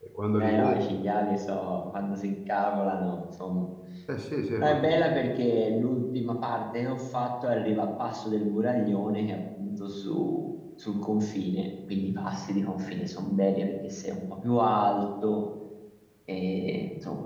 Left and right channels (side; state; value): both; identical; correlation 1.00